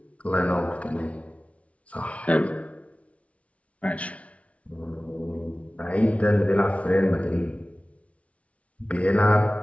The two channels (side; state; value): right; late; 0.064 ms